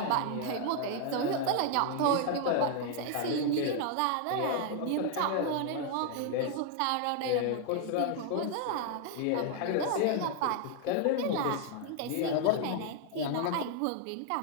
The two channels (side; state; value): both; different; correlation 0.00